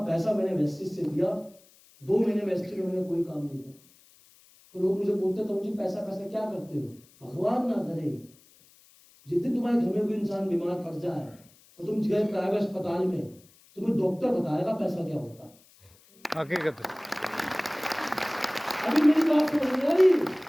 पैसा मैंने वेस्टिज से दिया। 2 महीने वेस्टिज में मैंने कोई काम नहीं किया। तो लोग मुझे बोलते तो मुझे पैसा पैसा क्या करते हो? भगवान ना करे जिस दिन तुम्हारे घर में कोई इंसान बीमार पड़ जाए तो तुम गए प्राइवेट अस्पताल में, तुम्हें डॉक्टर बताएगा पैसा क्या होता है। हकीकत। अभी मेरी बात समझ में आ रही?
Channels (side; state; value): left; noise; hiss, 28 dB below the sound